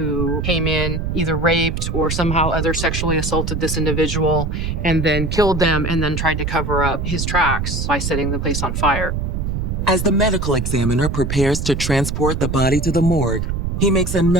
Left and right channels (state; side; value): noise; right; rumble, 2 dB below the sound